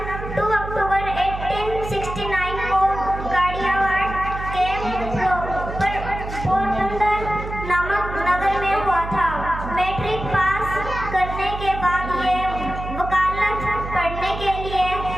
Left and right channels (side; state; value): right; noise; hum, 8 dB below the sound